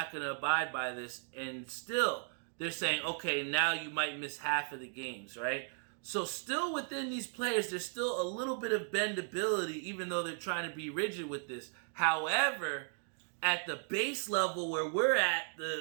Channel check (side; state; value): left; silent; 54 dB below the other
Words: going to abide by this, and still they're saying, okay, now you might miss half of the games, right? So still within these players, there's still a little bit of bendability, even though they're trying to be rigid with this. However, at the base level where we're at,